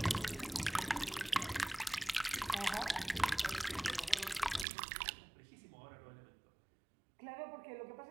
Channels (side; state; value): left; drops out; at 4.7 s